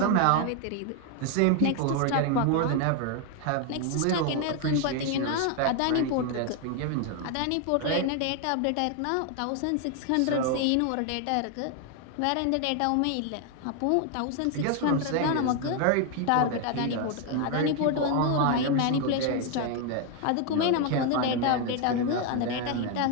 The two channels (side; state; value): both; different; correlation 0.01